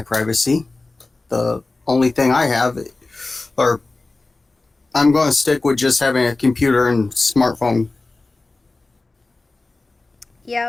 privacy. The only thing I have, or I'm going to stick with just having a computer and smartphone.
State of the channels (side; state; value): right; quieter; 3.3 dB